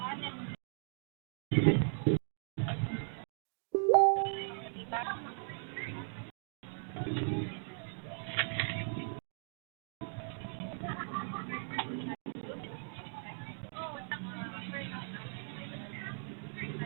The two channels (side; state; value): left; silent; 52 dB below the other